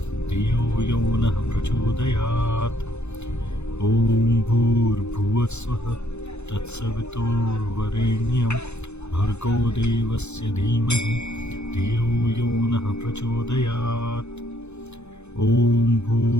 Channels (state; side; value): late; right; 0.81 ms